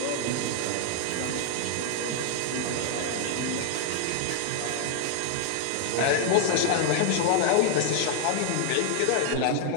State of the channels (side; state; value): both; different; correlation 0.00